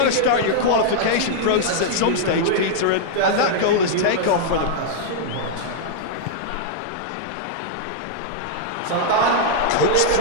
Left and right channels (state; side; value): different; both; correlation -0.02